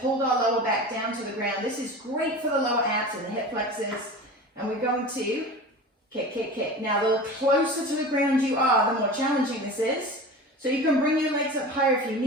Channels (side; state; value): both; normal; correlation 0.34